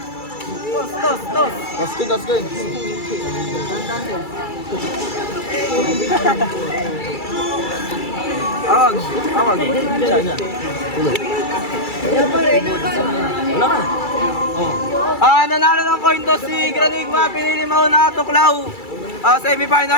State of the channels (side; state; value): right; late; 2.3 ms